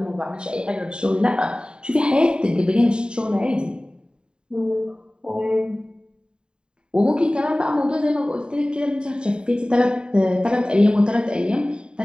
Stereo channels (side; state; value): left; late; 0.050 ms